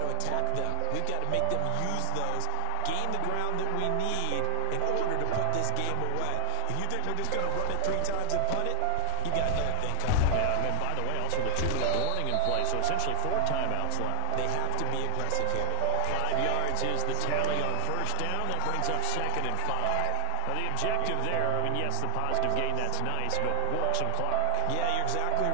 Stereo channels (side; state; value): both; different; correlation 0.01